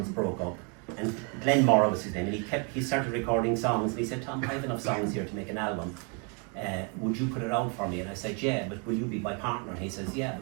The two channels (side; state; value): left; quieter; 36.3 dB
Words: broke up. And Glenn Morrow was his name, and he started recording songs, and he said, Tom, I have enough songs here to make an album. Would you put it out for me? And I said, yeah, but will you be my partner? And he says, yeah, I